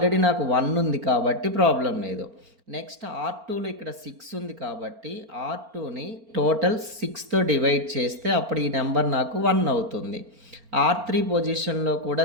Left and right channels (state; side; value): late; left; 4.4 ms